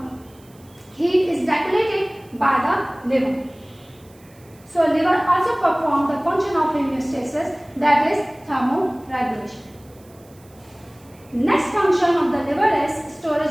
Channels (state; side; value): noise; right; hiss, 29 dB below the sound